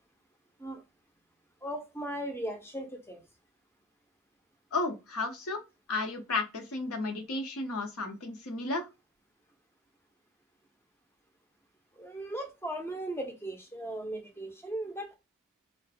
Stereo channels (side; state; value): both; normal; correlation 0.41